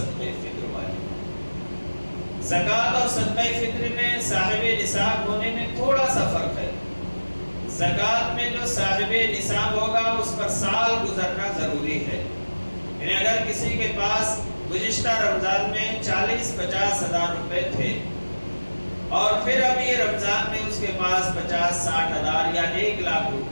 فطر واجب ہے. زکوٰۃ اور صدقہ فطر میں صاحب نصاب ہونے میں تھوڑا سا فرق ہے. زکوٰۃ میں جو صاحب نصاب ہوگا اس پر سال گزرنا ضروری ہے. یعنی اگر کسی کے پاس گزشتہ رمضان میں 40-50 ہزار روپے تھے اور پھر اب یہ رمضان میں اس کے پاس 50-60 ہزار یا 1 لاکھ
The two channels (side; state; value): both; inverted; correlation -1.00